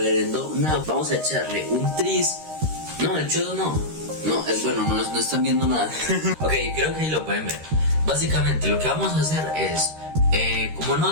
No, vamos a echarle un tris. No, el chodo no, es bueno, no están viendo nada. Ok, creo que ahí lo pueden ver. Básicamente lo que vamos a hacer es, como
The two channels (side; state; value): left; late; 13 ms